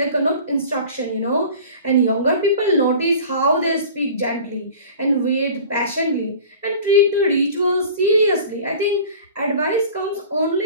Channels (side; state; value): both; inverted; correlation -0.41